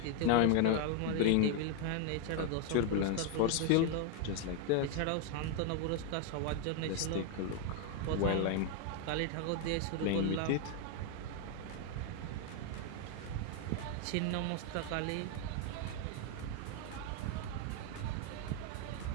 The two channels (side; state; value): both; different; correlation 0.01